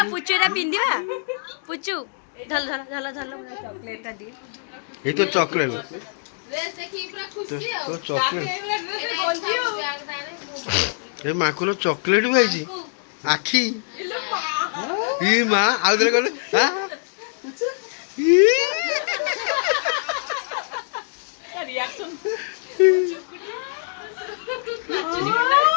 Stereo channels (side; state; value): right; silent; digital silence